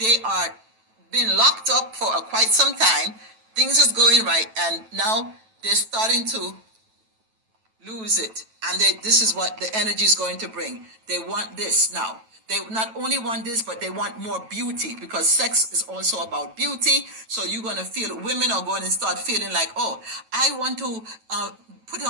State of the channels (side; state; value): left; late; 9.1 ms